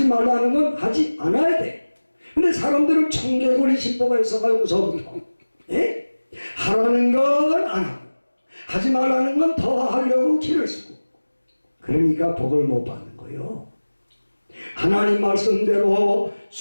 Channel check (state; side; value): inverted; both; correlation -1.00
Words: 말라는 건 하지 않아야 돼. 근데 사람들은 청개구리 신보가 있어가지고 무서운 거. 예? 하라는 건 안 하고 하지 말라는 건 더 하려고 길을 쓰고, 그러니까 복을 못 받는 거예요. 하나님 말씀대로